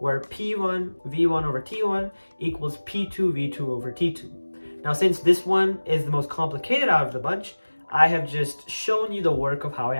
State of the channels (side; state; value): both; inverted; correlation -1.00